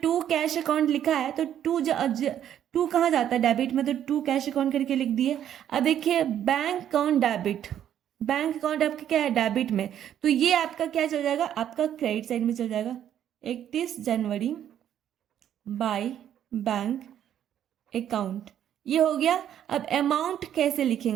2 कैश अकाउंट लिखा है तो 2 कहाँ जाता है डेबिट में, तो 2 कैश अकाउंट करके लिख दिए। अब देखिए bank account debit, bank account आपका क्या है डेबिट में, तो ये आपका क्या चल जाएगा, आपका क्रेडिट साइड में चल जाएगा। 31 जनवरी बाय बैंक अकाउंट, ये हो गया। अब अमाउंट कैसे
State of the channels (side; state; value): left; quieter; 10.3 dB